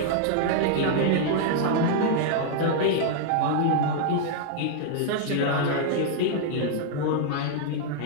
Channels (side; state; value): both; different; correlation -0.01